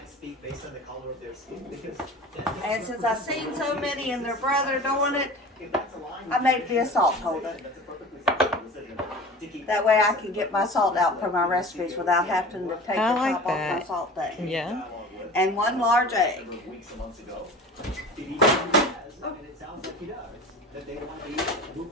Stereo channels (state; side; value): normal; both; correlation 0.37